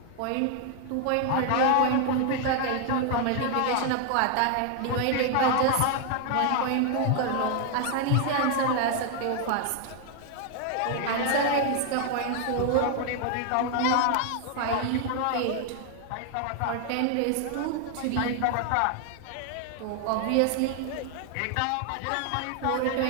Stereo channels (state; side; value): different; both; correlation 0.00